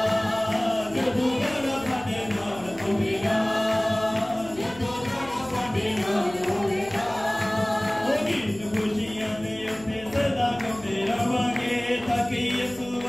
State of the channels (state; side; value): noise; left; hum, 19 dB below the sound